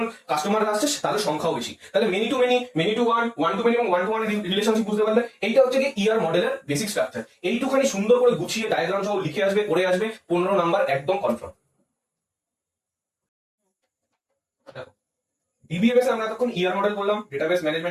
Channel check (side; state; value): both; identical; correlation 1.00